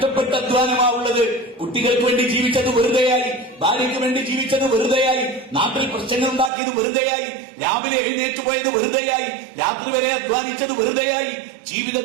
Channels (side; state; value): left; drops out; at 6.5 s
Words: അധ്വാനമാവുള്ളത്. കുട്ടികൾക്ക് വേണ്ടി ജീവിച്ചത് വെറുതെയായി, ഭാര്യയ്ക്ക് വേണ്ടി ജീവിച്ചത് വെറുതെയായി, നാട്ടിൽ പ്രശ്നങ്ങൾ ഉണ്ടാക്കിയത് വെറുതെയായി, രാവിലെ എഴുന്നേറ്റ് പോയത് വെറുതെയായി, രാത്രി വരെ അധ്വാനിച്ചത് വെറുതെയായി,